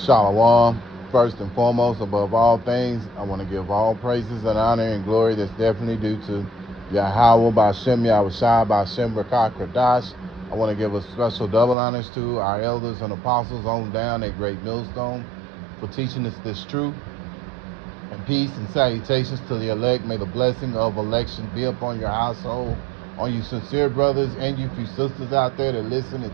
First and foremost, above all things, I want to give all praises and honor and glory that's definitely due to Yahweh Ba'Shem Yahushua Ba'Shem Rakah Kradash. I want to give a special double honors to our elders and apostles on down at Great Millstone for teaching us this truth. And peace and salutations to the elect. May the blessing of election be upon your household, on you sincere brothers and you few sisters out there that listen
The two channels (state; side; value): drops out; left; at 11.8 s